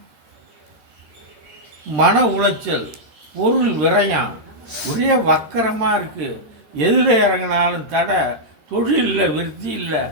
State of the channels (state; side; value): late; left; 13 ms